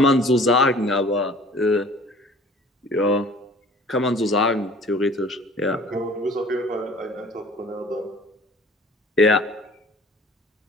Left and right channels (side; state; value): both; normal; correlation 0.49